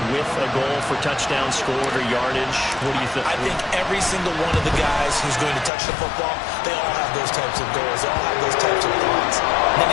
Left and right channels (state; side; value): drops out; right; at 5.7 s